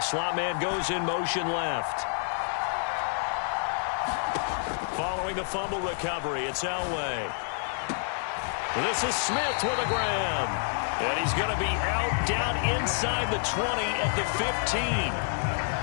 slot man goes in motion left. Following the fumble recovery, it's Elway. This is Smith with a grab. And he's going to be out down inside the 20 at the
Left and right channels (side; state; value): right; silent; digital silence